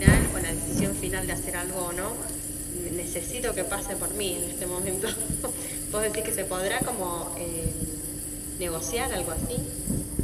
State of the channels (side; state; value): both; identical; correlation 1.00